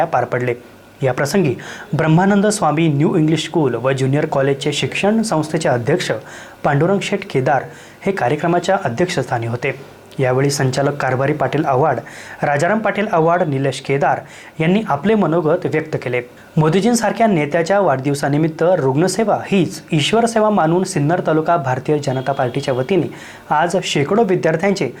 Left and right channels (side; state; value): both; identical; correlation 1.00